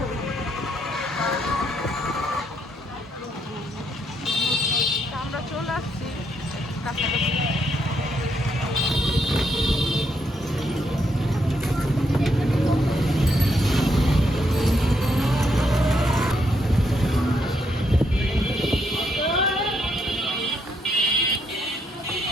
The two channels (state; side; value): normal; both; correlation 0.76